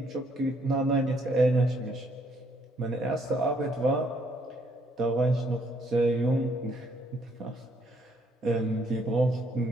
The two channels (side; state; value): both; normal; correlation 0.69